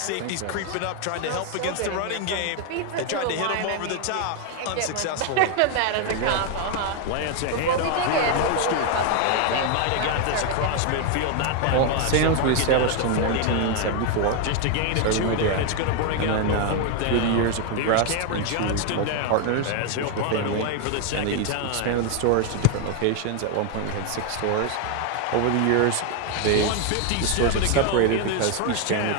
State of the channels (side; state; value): both; different; correlation 0.01